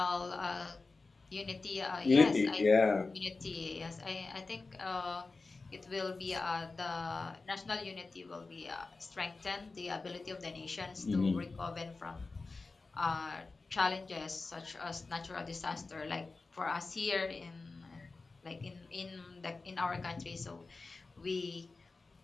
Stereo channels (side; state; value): right; quieter; 3.8 dB